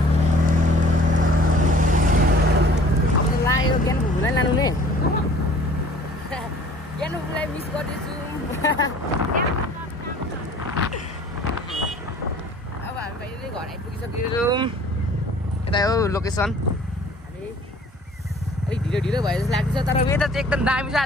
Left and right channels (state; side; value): normal; both; correlation 0.51